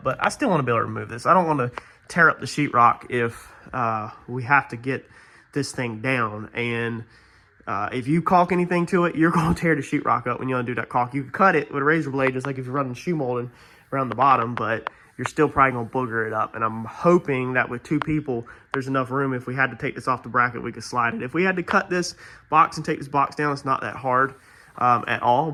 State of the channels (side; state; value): both; identical; correlation 1.00